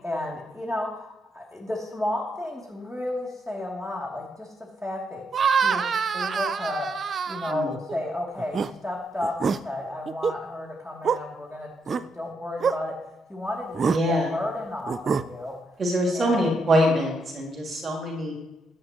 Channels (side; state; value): both; normal; correlation 0.79